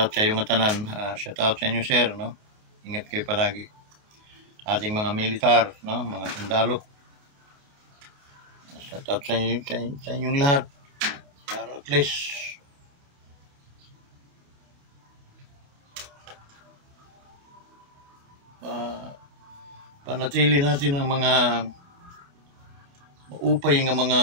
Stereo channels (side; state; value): left; late; 28 ms